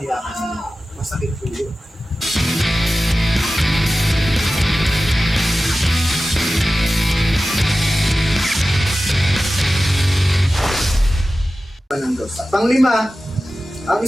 ka niya. Masakit po yun. Ng Diyos. At panglima, ang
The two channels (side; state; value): both; normal; correlation 0.95